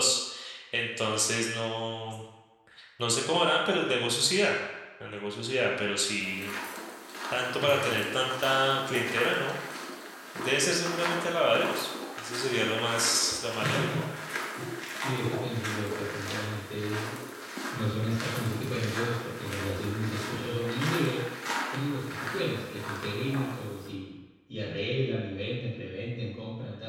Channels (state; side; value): identical; both; correlation 1.00